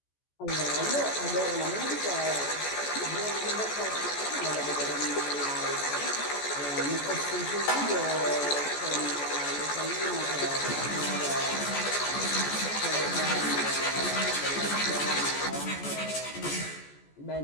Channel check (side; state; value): right; late; 14 ms